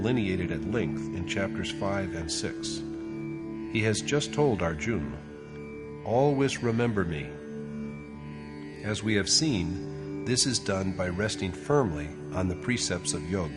at length in chapters 5 and 6. He has just told Arjuna, "Always remember me." As we have seen, this is done by resting firmly on the precepts of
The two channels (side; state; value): both; identical; correlation 1.00